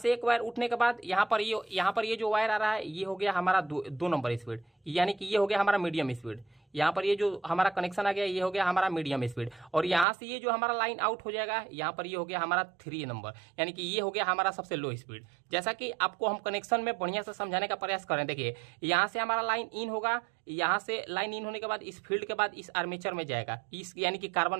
एक वायर उठने के बाद यहां पर ये जो वायर आ रहा है ये हो गया हमारा 2 नंबर स्पीड, यानी कि ये हो गया हमारा मीडियम स्पीड। यहाँ पर ये जो हमारा कनेक्शन आ गया ये हो गया हमारा मीडियम स्पीड। और यहाँ से ये जो हमारा लाइन आउट हो जाएगा, यहाँ पर ये हो गया हमारा 3 नंबर, यानी कि ये हो गया हमारा सबसे लो स्पीड। जैसा कि आपको हम कनेक्शन में बढ़िया से समझाने का प्रयास करें, देखिए यहाँ से हमारा लाइन इन होगा, यहाँ से लाइन इन होने के बाद इस फील्ड के बाद इस आर्मेचर में जाएगा, इस यानी कि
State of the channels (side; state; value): left; drops out; at 10.1 s